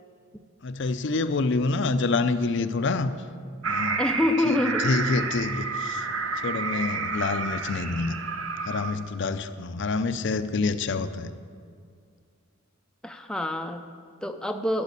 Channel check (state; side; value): normal; both; correlation 0.46